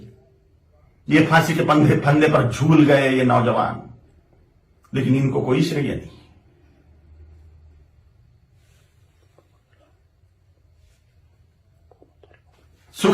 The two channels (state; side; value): identical; both; correlation 1.00